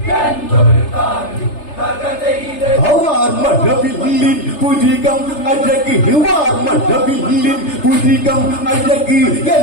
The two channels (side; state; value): right; late; 3.3 ms